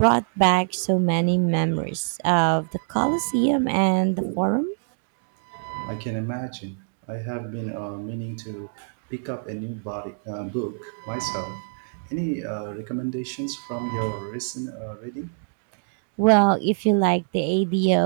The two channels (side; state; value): left; silent; digital silence